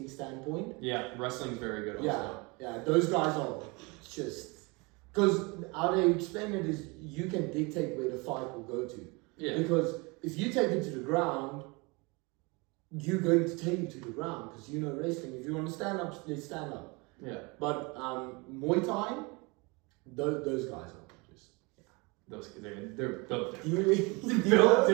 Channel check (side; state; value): left; quieter; 27.7 dB